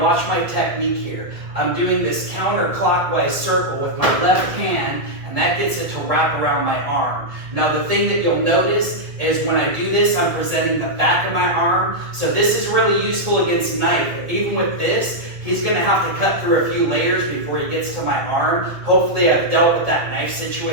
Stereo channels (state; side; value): late; left; 1.8 ms